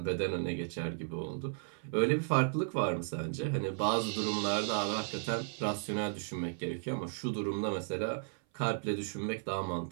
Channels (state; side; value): silent; left; 55 dB below the other